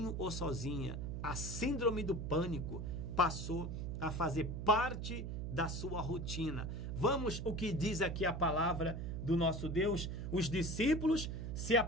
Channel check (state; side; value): noise; right; hum, 4 dB below the sound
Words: ou sozinha. A síndrome do pânico passou a fazer parte da sua rotina. Vamos o que diz aqui a palavra do nosso Deus. Os discípulos se